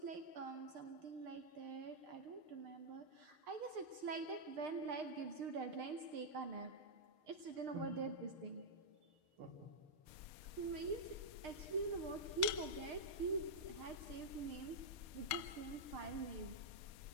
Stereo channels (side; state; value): left; late; 6.5 ms